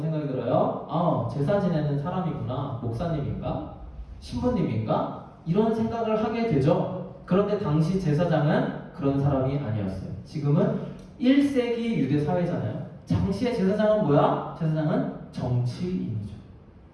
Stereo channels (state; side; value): identical; both; correlation 1.00